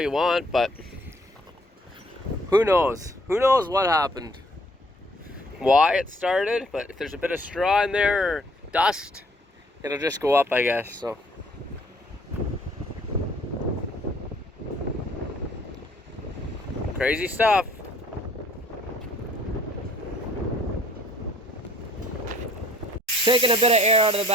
want, but who knows? Who knows what happened? Why it started, but if there's a bit of straw in there or dust, it'll just go up, I guess, so. Crazy stuff. Taking a bit of air out of the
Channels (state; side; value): normal; both; correlation 0.60